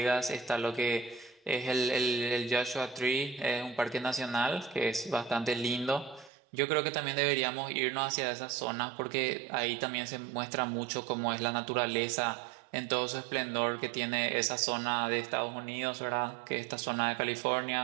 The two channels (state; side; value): drops out; left; at 6.3 s